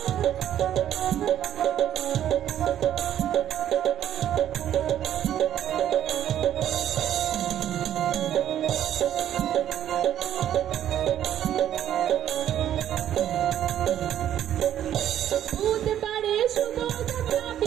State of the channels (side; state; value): left; quieter; 11.0 dB